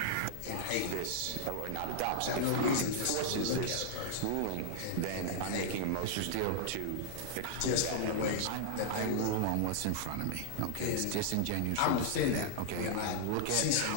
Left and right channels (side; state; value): both; different; correlation -0.01